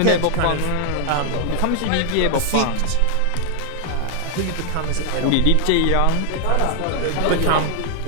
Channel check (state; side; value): different; both; correlation 0.00